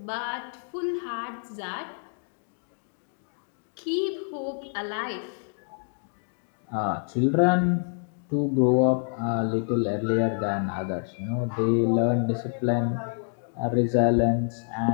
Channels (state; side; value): silent; right; 58 dB below the other